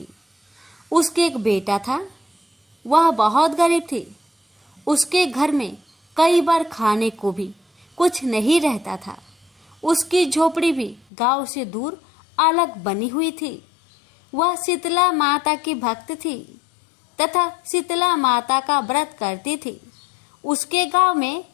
उसके एक बेटा था। वह बहुत गरीब थी। उसके घर में कई बार खाने को भी कुछ नहीं रहता था। उसकी झोपड़ी भी गांव से दूर अलग बनी हुई थी। वह शीतला माता की भक्त थी तथा शीतला माता का व्रत करती थी। उसके गांव में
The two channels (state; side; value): drops out; right; at 11.0 s